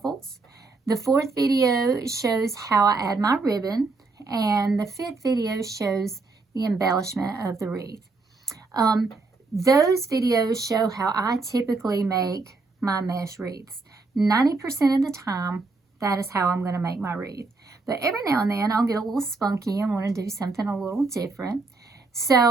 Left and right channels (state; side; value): quieter; left; 3.8 dB